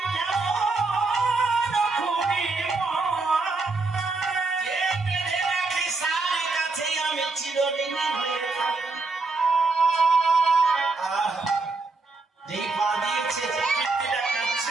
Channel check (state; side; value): quieter; left; 3.7 dB